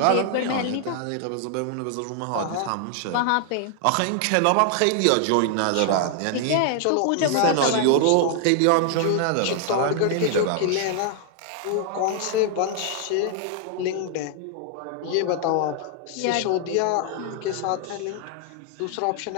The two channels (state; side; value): different; both; correlation 0.00